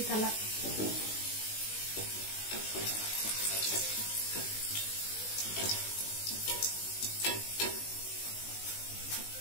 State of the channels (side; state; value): right; late; 19 ms